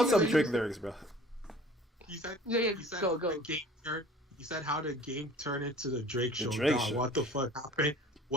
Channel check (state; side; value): normal; both; correlation 0.48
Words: some Drake lyrics, bro. He said, go. He said how the game turned into the Drake show. Show. What the fuck happened?